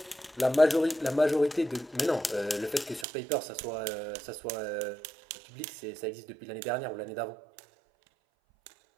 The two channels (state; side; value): drops out; left; at 3.1 s